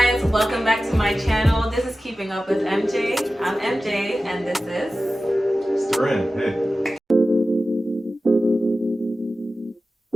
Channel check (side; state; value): both; normal; correlation 0.95